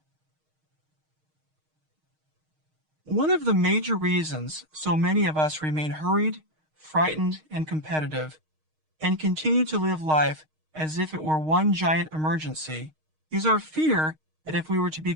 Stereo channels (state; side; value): late; left; 6.4 ms